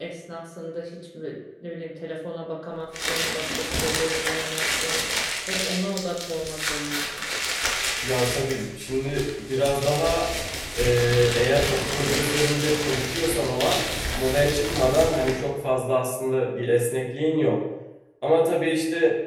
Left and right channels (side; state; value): both; identical; correlation 1.00